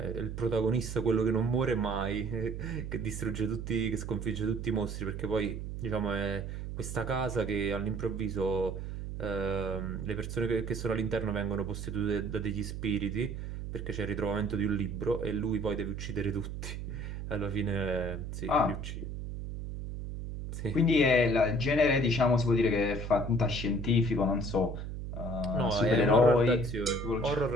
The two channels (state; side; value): noise; right; hum, 6 dB below the sound